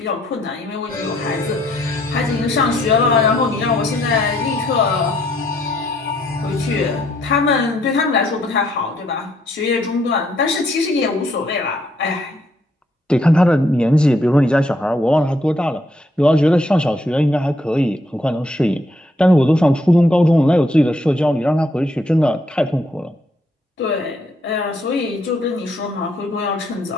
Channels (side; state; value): both; normal; correlation 0.71